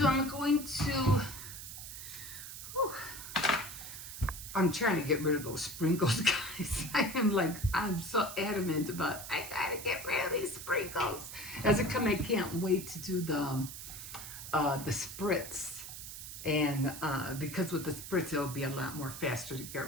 I'm going to, I'm trying to get rid of those sprinkles, guys. I'm so adamant about, I gotta get rid of these sprinkles. As it comes, I can't wait to do the spritz. And because with the spritz, it'll be a lot more faster to get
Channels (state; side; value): noise; right; hiss, 10 dB below the sound